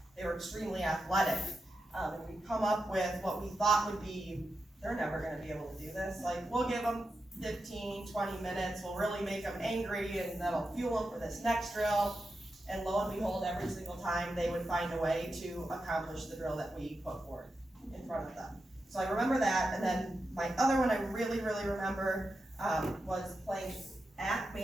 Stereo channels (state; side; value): normal; both; correlation 0.89